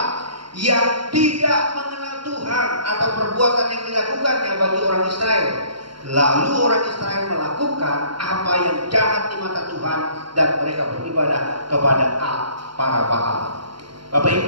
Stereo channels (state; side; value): late; left; 0.73 ms